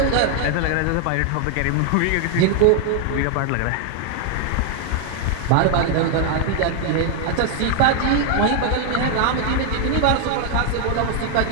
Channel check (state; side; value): different; both; correlation 0.00